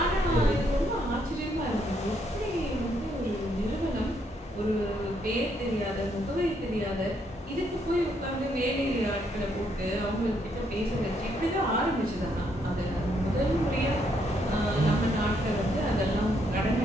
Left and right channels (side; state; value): both; normal; correlation 0.73